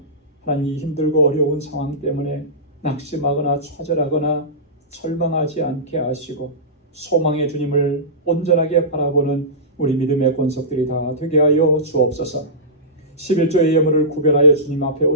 하나님 힘들고 어려운 상황 때문에 낙심하거나 좌절하거나 절망하지 않게 하시고 소망의 주님을 온전하게 바라보는 우리 믿음의 권속들이 다 되게 하여 주옵소서. 11조의 예물을 구별하여 주님 앞에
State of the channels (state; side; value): normal; both; correlation -0.18